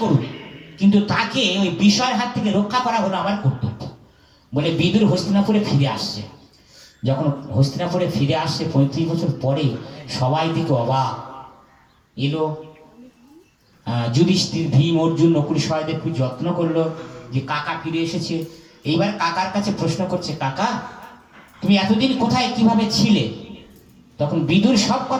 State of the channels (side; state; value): both; identical; correlation 1.00